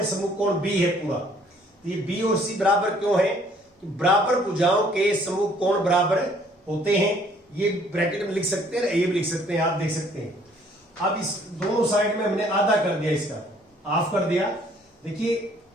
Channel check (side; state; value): both; normal; correlation 0.60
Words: समूह कोण B है पूरा। तो ये B और C बराबर क्यों है? कि बराबर भुजाओं के समूह कोण बराबर होते हैं। ये ब्रैकेट में लिख सकते हैं, ये भी लिख सकते हैं, आप देख सकते हैं। अब इस दोनों साइड में हमने आधा कर दिया, इसका हाफ कर दिया। देखिए